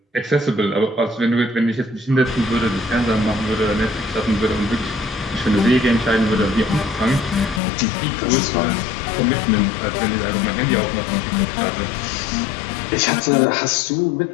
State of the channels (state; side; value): drops out; right; at 7.6 s